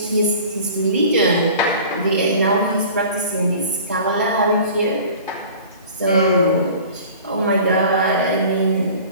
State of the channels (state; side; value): inverted; both; correlation -0.43